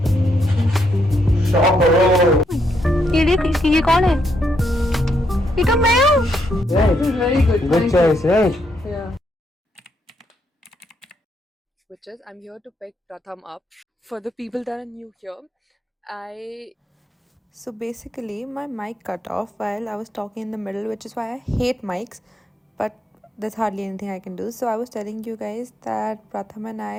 ये कौन है? ये तो मैं हूँ. Right. Very good. Good choice, right? Yeah. Which is, I'm here to pick Pratham up. For the people that are new here, So basically, my mic cut off while I was talking in the middle, which is why I hate mics, but there's hardly anything I can do. So I was telling you guys that Pratham and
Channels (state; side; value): normal; both; correlation 0.76